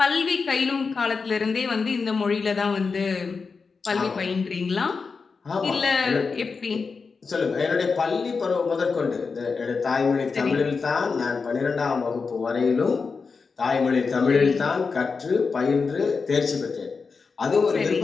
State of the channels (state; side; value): quieter; right; 4.9 dB